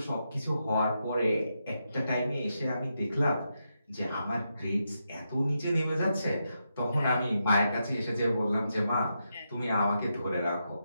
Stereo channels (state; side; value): inverted; both; correlation -0.84